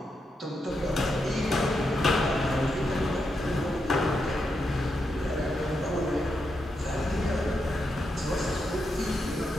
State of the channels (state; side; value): normal; both; correlation 0.84